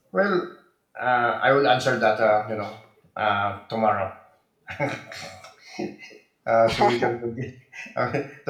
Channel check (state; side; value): identical; both; correlation 1.00